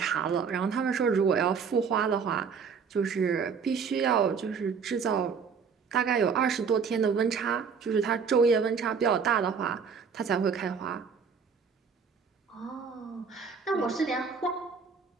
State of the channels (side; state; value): left; quieter; 6.0 dB